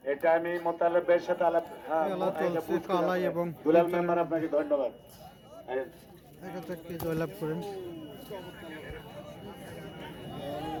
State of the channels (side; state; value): both; identical; correlation 1.00